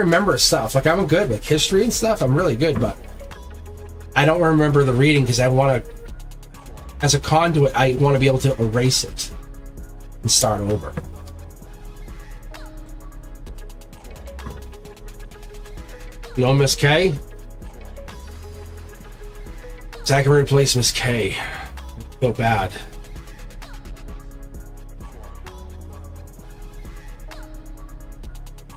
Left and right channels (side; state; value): both; identical; correlation 1.00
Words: stuff. Like I'm good with history and stuff. I'm really good, but I don't remember the reading because I want to, as a conduit, I want to be able to erase it and start over. You know Miss K? Zach can replace Miss K. Feel bad.